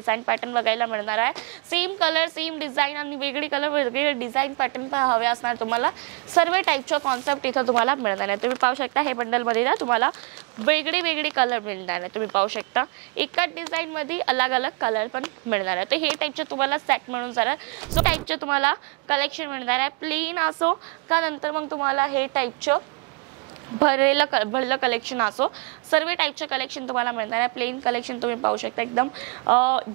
पॅटर्न बघायला मिळणार आहे। सेम कलर सेम डिझाइन आणि वेगळे कलर वेगळे डिझाइन पॅटर्न पण हवे असणार तुम्हाला सर्व टाईपचा कॉन्सेप्ट इथं तुम्हाला मिळणार आहे। तुम्ही पाहू शकता हे बंडलमध्ये ना तुम्हाला वेगळे वेगळे कलर मिळणार आहे। तुम्ही पाहू शकता एकाच डिझाइनमध्ये अलग अलग कलर पण मिळणार आहे। तर हे टाईपचे तुम्हाला सेट मिळून जरा सो टाईपचे तुम्हाला कलेक्शन मिळणार आहे। प्लेन असो का नंतर मग तुम्हाला हे टाईपचं भरलेलं कलेक्शन असो सर्व टाईपचे कलेक्शन तुम्हाला मिळणार आहे। प्लेन कलेक्शन तुम्ही पाहू शकता एकदम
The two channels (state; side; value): quieter; left; 30.1 dB